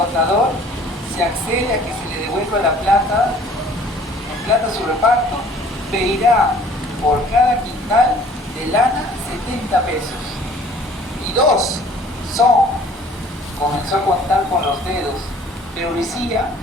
se accede a que se le devuelva la plata, en plata su reparto, pedirá por cada quintal de lana 70 pesos. Y 2 son. Comenzó a contar con los dedos, pero Lucía,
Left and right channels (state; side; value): normal; both; correlation 0.53